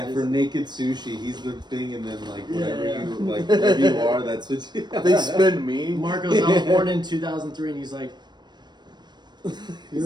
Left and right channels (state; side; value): late; left; 0.21 ms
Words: Just- for naked sushi, he's the thing, and then like whatever Yeah. you like, whatever you are, that's what you. They spin me. Marcos, I was born in 2003, and he's like,